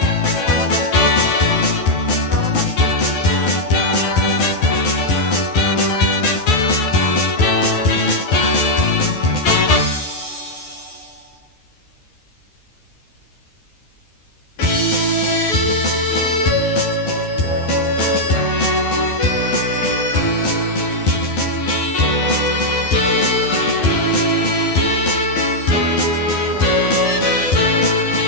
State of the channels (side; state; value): right; late; 12 ms